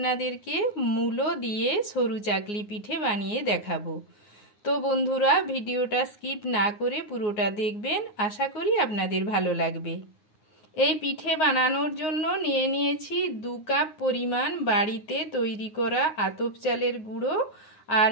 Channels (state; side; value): late; right; 9.6 ms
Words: মূলো দিয়ে সরু চাকলি পিঠে বানিয়ে দেখাবো। তো বন্ধুরা, ভিডিওটা স্কিপ না করে পুরোটা দেখবেন, আশা করি আপনাদের ভালো লাগবে। এই পিঠে বানানোর জন্য নিয়ে নিয়েছি 2 কাপ পরিমাণ বাড়িতে তৈরি করা আতপ চালের গুঁড়ো, আর